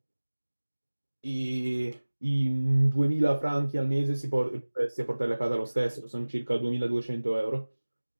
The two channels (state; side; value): inverted; both; correlation -1.00